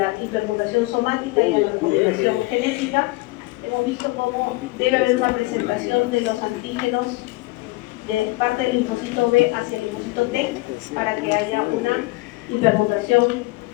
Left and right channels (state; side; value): quieter; right; 21.8 dB